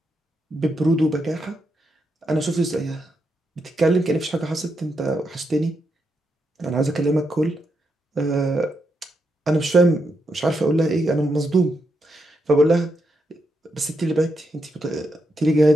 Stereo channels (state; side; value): normal; both; correlation 0.82